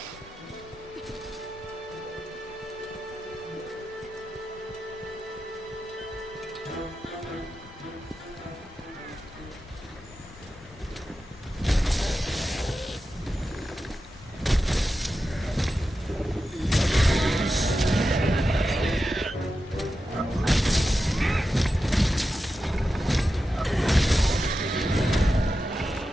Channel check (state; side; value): normal; both; correlation 0.91